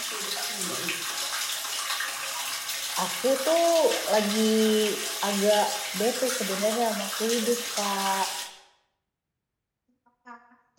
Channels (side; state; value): both; identical; correlation 1.00